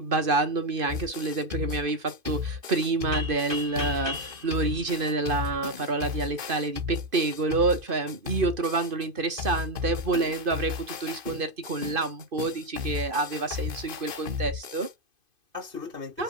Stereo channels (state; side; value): late; left; 2.5 ms